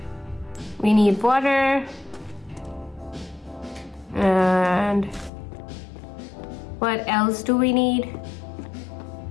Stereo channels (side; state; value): right; drops out; at 5.3 s